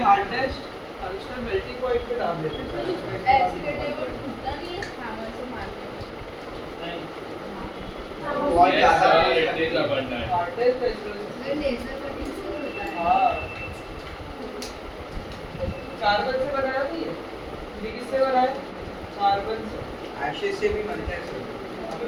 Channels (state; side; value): identical; both; correlation 1.00